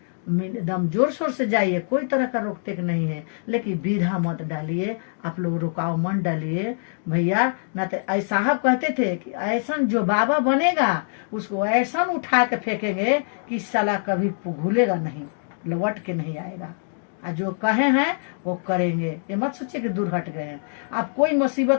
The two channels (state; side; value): silent; right; digital silence